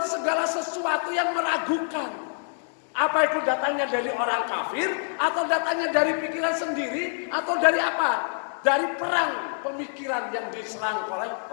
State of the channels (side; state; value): right; silent; digital silence